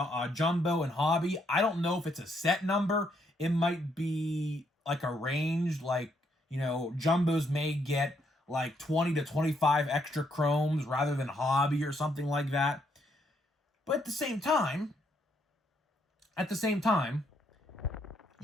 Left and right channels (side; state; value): both; normal; correlation 0.74